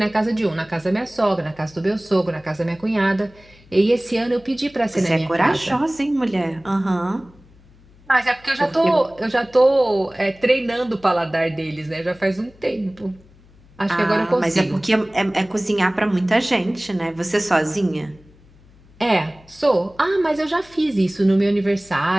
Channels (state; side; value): noise; left; hum, 27 dB below the sound